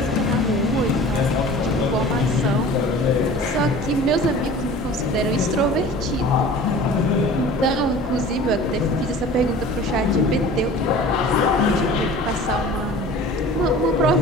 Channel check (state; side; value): normal; both; correlation 0.42